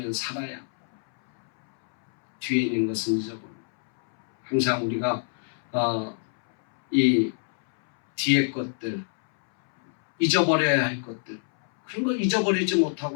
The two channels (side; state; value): right; silent; 62 dB below the other